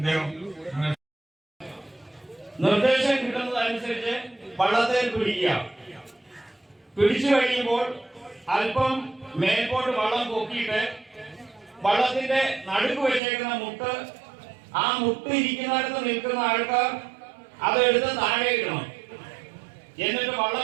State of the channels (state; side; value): drops out; left; at 13.2 s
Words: നിർദ്ദേശം കിട്ടുന്നതനുസരിച്ച് വള്ളത്തിൽ പിടിച്ചു കഴിയുമ്പോൾ അല്പം മേൽപോട്ട് വള്ളം പൊക്കിയിട്ട് വള്ളത്തിന്റെ നടുക്ക് വെച്ചേക്കുന്ന മുട്ട്, ആ മുട്ട് ഇരിക്കുന്നിടത്ത് നിൽക്കുന്ന ആൾക്കാർ അതെടുത്ത് താഴെ ഇടണം. എന്നിട്ട്